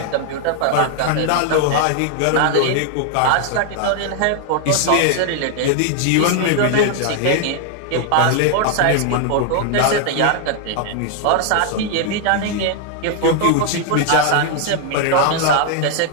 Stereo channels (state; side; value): different; both; correlation 0.00